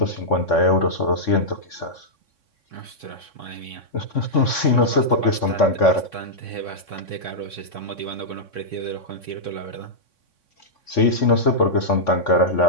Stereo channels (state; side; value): late; right; 3.6 ms